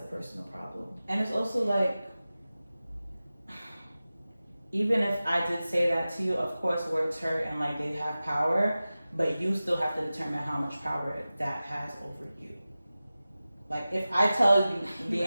personal problem. And it's also like, even if I did say that to you, of course words hurt and like they have power, but you still have to determine how much power that has over you. Like if I tell you,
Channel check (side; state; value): both; inverted; correlation -0.96